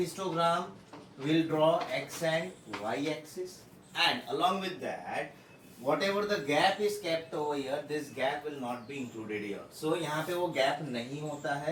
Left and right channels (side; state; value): both; identical; correlation 1.00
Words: we'll draw x and y axis, and along with that whatever the gap is kept over here, this gap will not be included here. So यहाँ पे वो gap नहीं होता